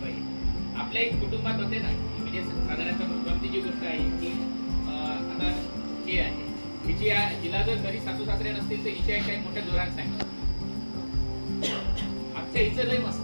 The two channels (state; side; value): inverted; both; correlation -1.00